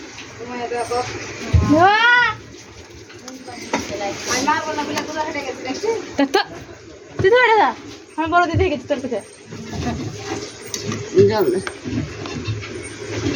তুমি দেখো আমি মার বলা বলে তোরা হেঁটে গেছি দেখছিস তো তুই তো হেঁটে যা আমি বড় দিদি গেছি তোর কাছে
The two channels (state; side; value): identical; both; correlation 1.00